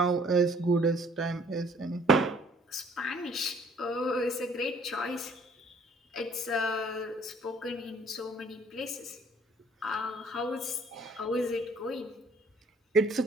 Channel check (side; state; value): both; normal; correlation 0.58